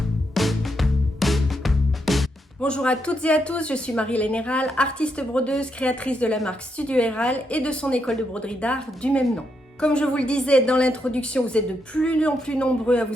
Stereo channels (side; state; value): both; normal; correlation 0.80